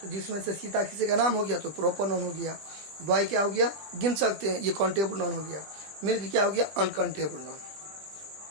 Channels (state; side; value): late; left; 20 ms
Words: तो जिसमें से सीता किसी का नाम हो गया तो प्रॉपर नॉन हो गया, बॉय क्या हो गया, गिन सकते हैं, ये काउंटेबल नॉन हो गया, मिल्क क्या हो गया, अनकाउंटेबल नॉन।